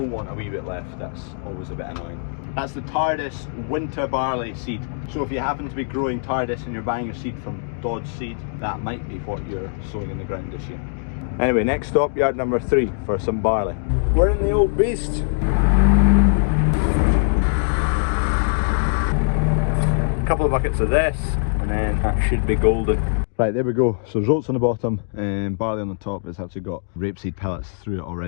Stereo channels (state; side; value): silent; right; digital silence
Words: want a wee bit left, that's always a bit annoying. That's the TARDIS winter barley seed. So if you happen to be growing TARDIS and you're buying your seed from Dodge Seed, that might be what you're sowing in the ground this year. Anyway, next stop, yard number 3 for some barley. We're in the old beast. A couple of buckets of this and then that should be golden. Right, there we go. So there's oats on the bottom and barley on the top. It's actually got rapeseed pellets through it